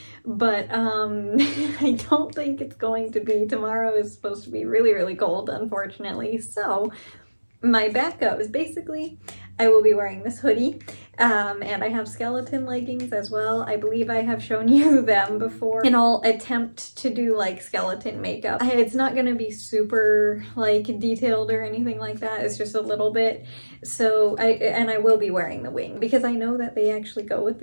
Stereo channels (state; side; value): inverted; both; correlation -1.00